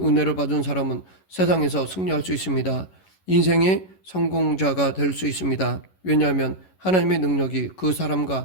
은혜를 받은 사람은 세상에서 승리할 수 있습니다. 인생의 성공자가 될 수 있습니다. 왜냐하면 하나님의 능력이 그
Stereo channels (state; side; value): late; right; 11 ms